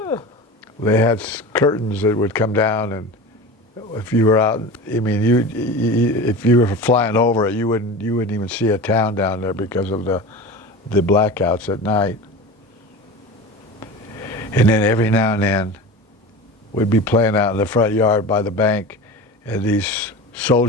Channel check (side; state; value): both; normal; correlation 0.32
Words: They had curtains that would come down, and if you were out, I mean, if you were flying over it, you wouldn't even see a town down there because of the blackouts at night. And then every now and then, we'd be playing out in the front yard by the bank, and these